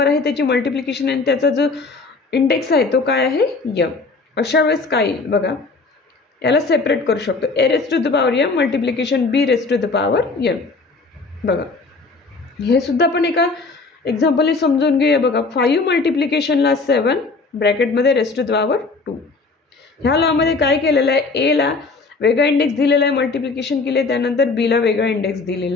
आहे त्याची मल्टिप्लिकेशन आणि त्याचा जो इंडेक्स आहे तो काय आहे m. अशा वेळेस काय बघा याला सेपरेट करू शकतो. a⁻m multiplication b⁻m. बघा हे सुद्धा आपण एका एक्झाम्पल समजून घेऊया. बघा 5 मल्टिप्लिकेशनला 7 ब्रॅकेटमध्ये (2). ह्या लॉमध्ये काय केलेलं आहे एला वेगळा इंडेक्स दिलेला आहे मल्टिप्लिकेशन केले त्यानंतर बीला वेगळा इंडेक्स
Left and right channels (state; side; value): quieter; right; 3.9 dB